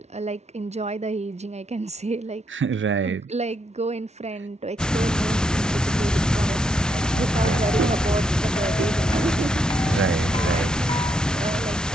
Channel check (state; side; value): normal; both; correlation 0.77